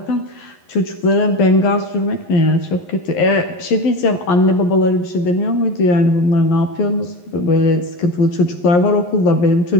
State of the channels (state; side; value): late; right; 11 ms